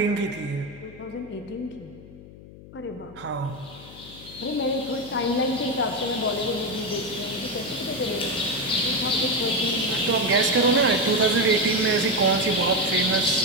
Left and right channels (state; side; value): noise; left; hum, 18 dB below the sound